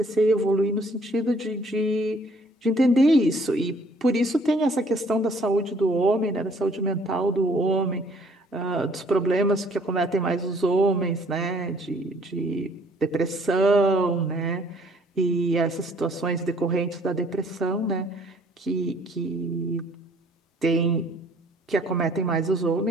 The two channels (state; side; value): normal; both; correlation 0.60